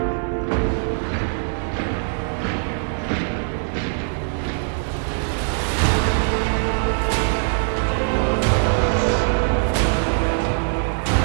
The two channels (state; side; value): silent; left; digital silence